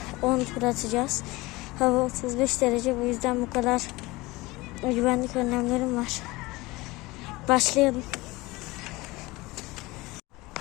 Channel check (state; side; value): quieter; right; 21.5 dB